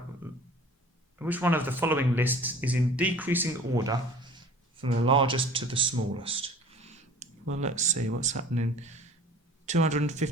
is in decreasing order from the largest to the smallest? Well, let's see what's happening.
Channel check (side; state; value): both; normal; correlation 0.45